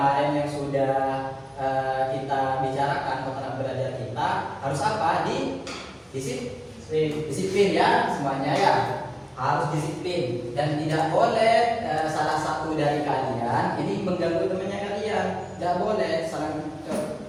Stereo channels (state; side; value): identical; both; correlation 1.00